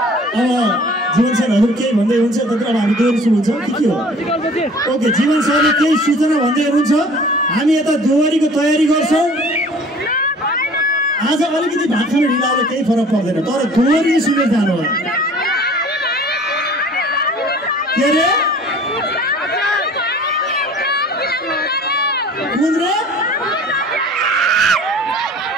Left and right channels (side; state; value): both; normal; correlation 0.48